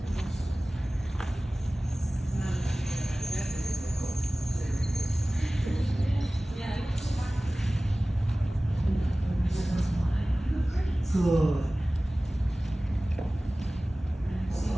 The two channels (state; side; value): normal; both; correlation 0.98